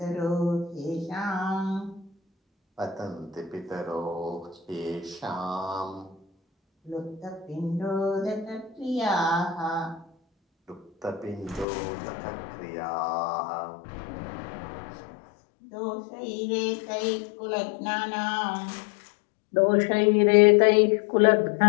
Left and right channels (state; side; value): drops out; right; at 11.7 s